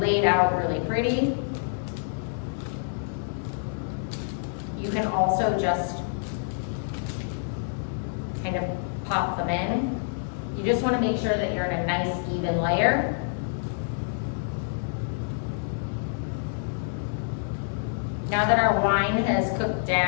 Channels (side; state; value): right; silent; digital silence